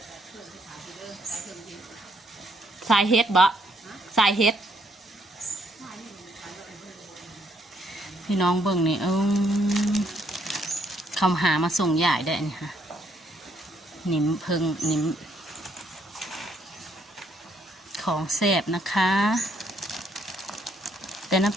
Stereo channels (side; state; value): both; normal; correlation 0.70